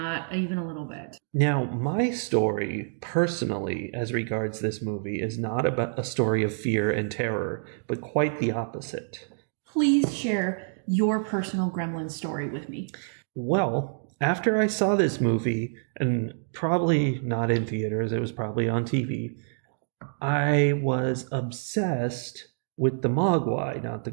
even a little bit. Now, my story, personally, as regards this movie, is not about a story of fear and terror, but quite the opposite. Please share your personal Gremlin story with me. Well, after I saw this movie, and probably not in theaters, it was probably on TV, I was obsessed with the Mogwai, not the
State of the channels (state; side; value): silent; left; digital silence